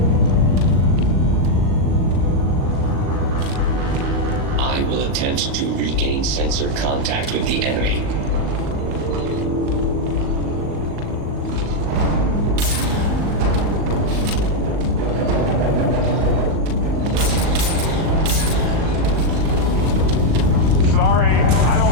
To regain sensor contact with the enemy. Sorry, I don't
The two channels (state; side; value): late; left; 39 ms